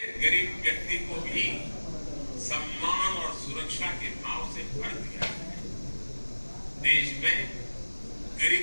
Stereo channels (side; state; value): both; inverted; correlation -1.00